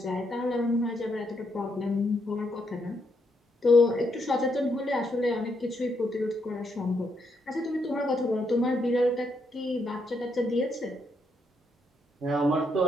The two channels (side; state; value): both; normal; correlation 0.77